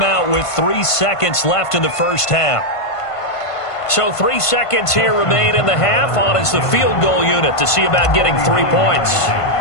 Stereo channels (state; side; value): late; right; 1.5 ms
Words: with 3 seconds left in the first half. So 3 seconds here remain in the half. On is the field goal unit to see about getting 3 points.